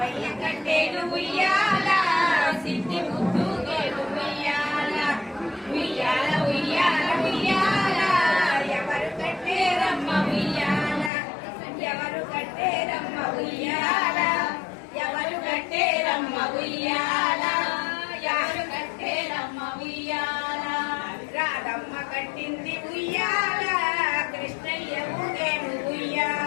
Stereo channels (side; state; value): right; drops out; at 11.1 s